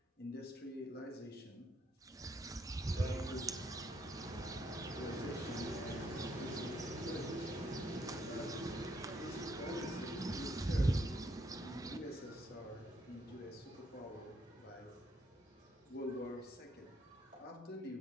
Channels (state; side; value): normal; both; correlation 0.72